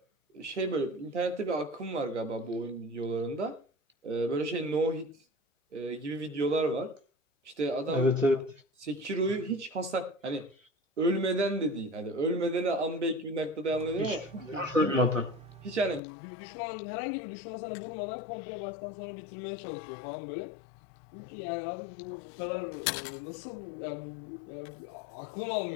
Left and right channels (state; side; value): drops out; right; at 16.0 s